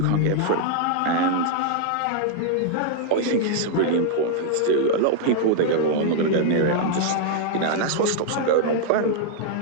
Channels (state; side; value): different; both; correlation -0.01